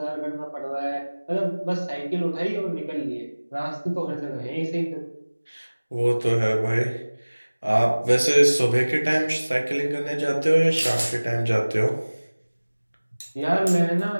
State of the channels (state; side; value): inverted; both; correlation -1.00